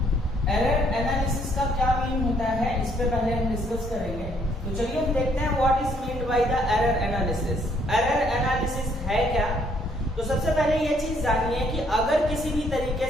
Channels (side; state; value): both; normal; correlation 0.67